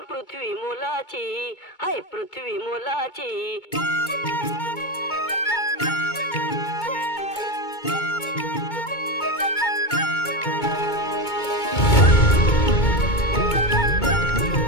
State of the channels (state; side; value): late; right; 2.2 ms